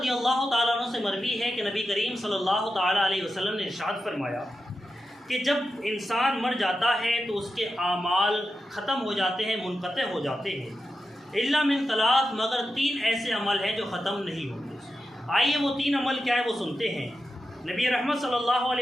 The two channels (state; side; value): normal; both; correlation 0.90